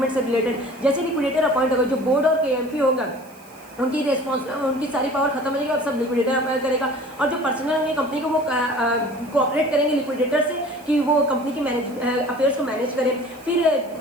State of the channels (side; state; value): right; noise; hiss, 26 dB below the sound